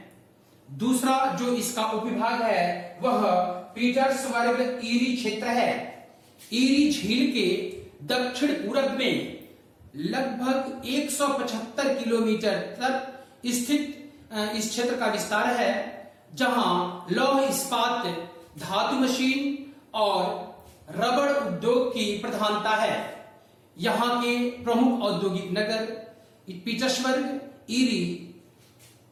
दूसरा जो इसका उपविभाग है वह पीटर्सबर्ग ईरी क्षेत्र है। ईरी झील के दक्षिण पूरब में लगभग 175 किलोमीटर तक स्थित इस क्षेत्र का विस्तार है, जहां लौह इस्पात, धातु मशीन और रबड़ उद्योग की प्रधानता है। यहां के प्रमुख औद्योगिक नगर पीटर्सबर्ग, ईरी,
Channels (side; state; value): both; identical; correlation 1.00